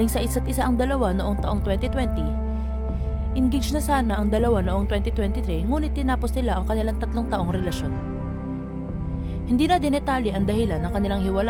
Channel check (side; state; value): both; identical; correlation 1.00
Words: sa isa't isa ang dalawa noong taong 2020. Engaged na sana ang dalawa noong 2023 ngunit tinapos nila ang kanilang 3 taong relasyon. Hindi na dinetalye ang dahilan ng kanilang